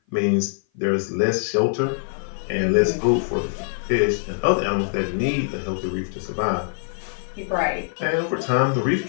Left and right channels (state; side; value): silent; right; 56 dB below the other